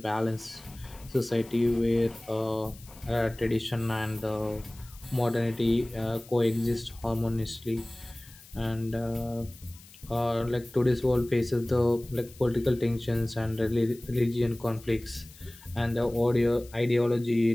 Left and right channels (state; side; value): noise; left; hiss, 22 dB below the sound